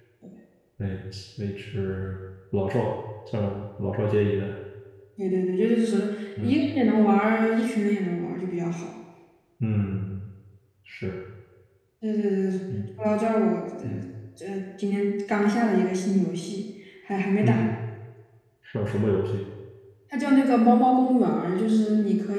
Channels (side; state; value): both; identical; correlation 1.00